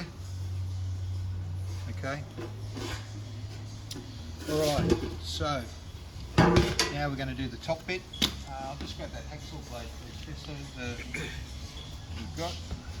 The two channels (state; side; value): identical; both; correlation 1.00